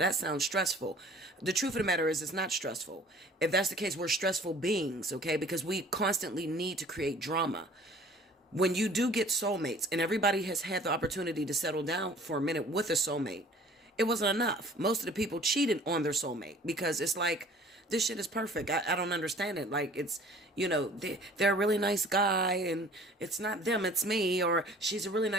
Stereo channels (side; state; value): both; normal; correlation 0.50